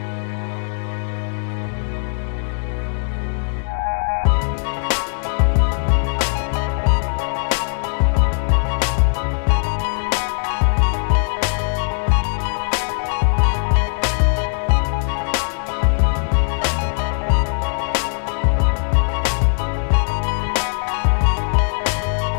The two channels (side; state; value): right; silent; 66 dB below the other